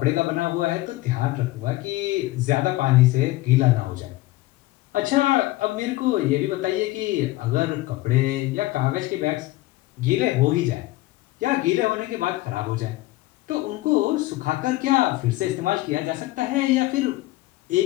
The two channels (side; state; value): right; quieter; 18.2 dB